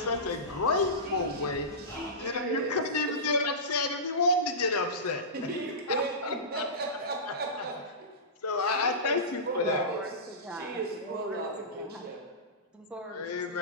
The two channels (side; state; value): both; normal; correlation -0.19